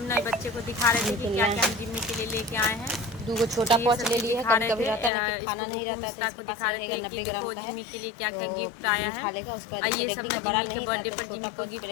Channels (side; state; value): right; drops out; at 5.1 s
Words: नए बच्चे को दिखा रहे थे कि क्या क्या हम जिम्मी के लिए लेके आए हैं। 2 छोटा पॉच ले लिए है, कभी कभी रहता है ना कि खाना नहीं रहता है तो इसके पास रहेगा 90 ग्राम का है, जिम्मी के लिए क्या क्या गिफ्ट आया है। खा लेगा। उसके बाद रेगड़ी का बड़ा नहीं था तो छोटा पॉच